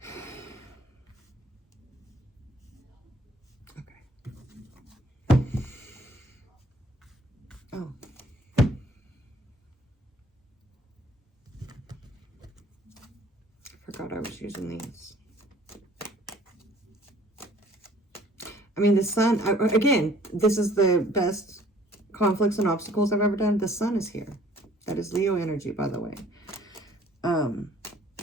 Oh. Forgot I was using these. I mean, the Sun, again, this is the best conflicts and obstacles I've ever done. The Sun is here. That is Leo energy, by the way. I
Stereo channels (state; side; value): normal; both; correlation 0.56